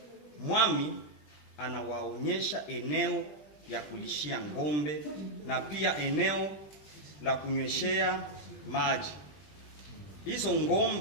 Mwami anawaonyesha eneo ya kulishia ngombe na pia eneo la kunyweshea maji hizo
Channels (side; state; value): right; late; 20 ms